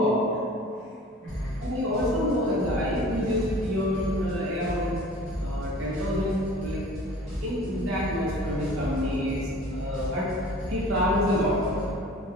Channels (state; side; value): normal; both; correlation 0.45